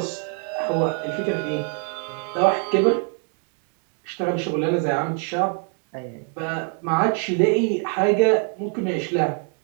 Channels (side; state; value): left; quieter; 38.9 dB